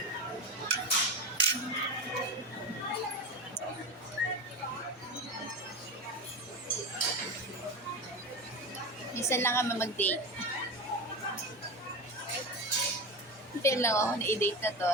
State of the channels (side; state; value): both; normal; correlation 0.22